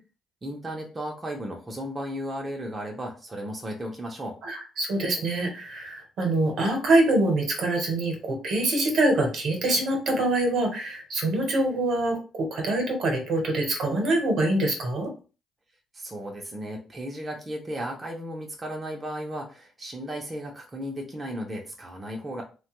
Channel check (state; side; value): normal; both; correlation 0.71